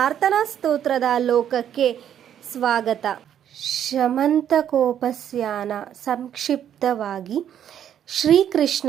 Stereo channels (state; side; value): quieter; left; 9.8 dB